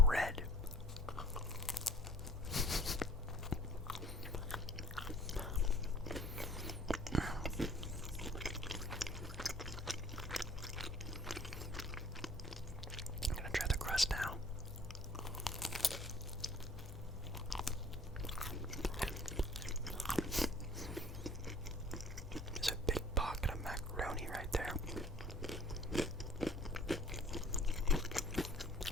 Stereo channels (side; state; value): both; normal; correlation 0.51